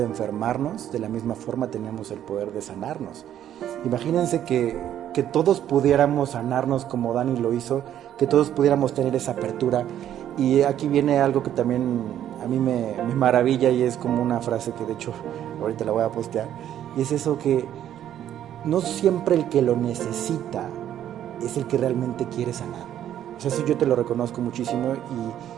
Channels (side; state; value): left; quieter; 10.9 dB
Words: enfermarnos, de la misma forma tenemos el poder de sanarnos. Imagínense que todos pudiéramos sanarnos como Dani lo hizo, que todos pudiéramos tener esa apertura. Y aquí viene algo que también a mí me maravilla, y es como una frase que de hecho ahorita la voy a postear, y es eso que no siempre el que lo necesita es el que realmente quiere sanar. O sea, eso yo te lo reconozco muchísimo